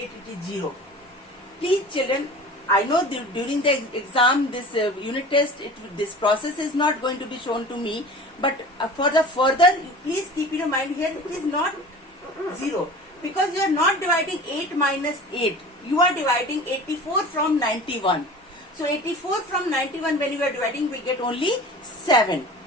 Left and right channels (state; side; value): normal; both; correlation 0.38